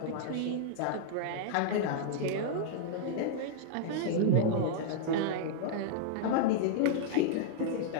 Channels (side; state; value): both; different; correlation -0.01